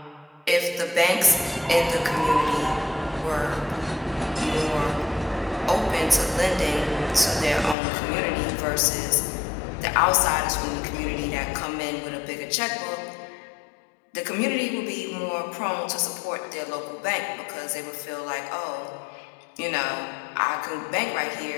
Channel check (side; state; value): right; drops out; at 7.8 s